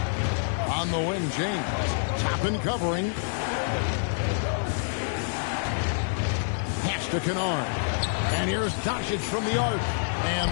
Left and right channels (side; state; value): right; silent; digital silence